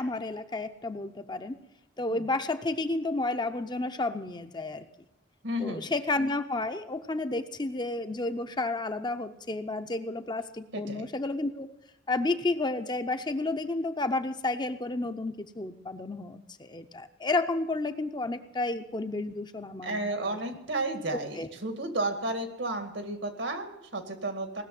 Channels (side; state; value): both; normal; correlation 0.38